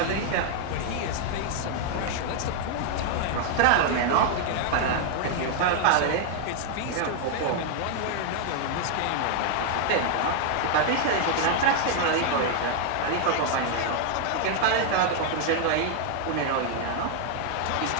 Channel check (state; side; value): different; both; correlation 0.00